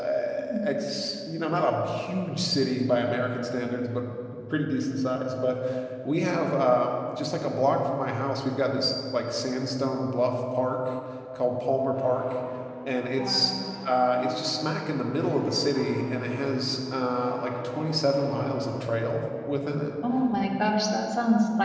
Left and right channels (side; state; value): both; identical; correlation 1.00